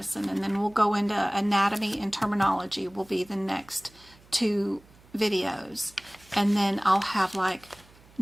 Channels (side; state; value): right; noise; hum, 27 dB below the sound